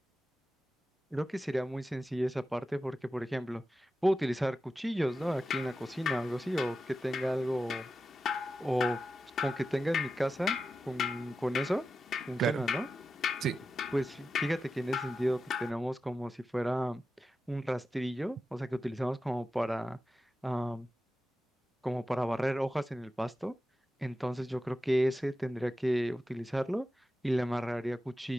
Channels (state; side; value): normal; both; correlation 0.91